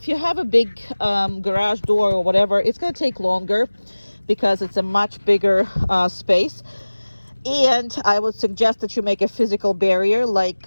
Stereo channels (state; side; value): inverted; both; correlation -1.00